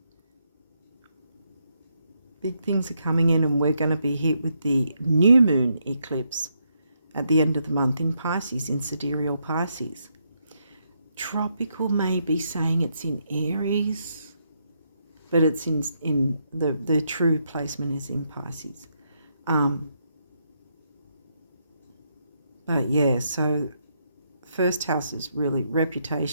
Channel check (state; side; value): inverted; both; correlation -0.78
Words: Big things are coming in, and we're going to be hit with the new moon eclipse at the end of the month in Pisces, in sidereal Pisces. Tropical may be saying it's in Aries, but it's in the true placement is in Pisces. But yeah, so first house is really